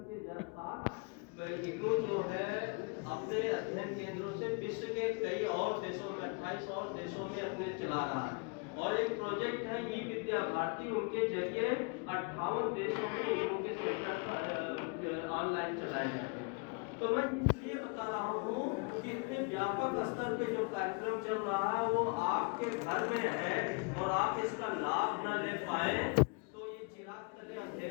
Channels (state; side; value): quieter; right; 33.9 dB